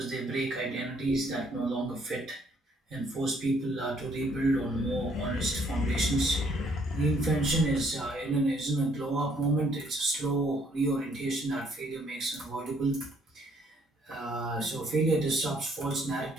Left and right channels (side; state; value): both; normal; correlation 0.65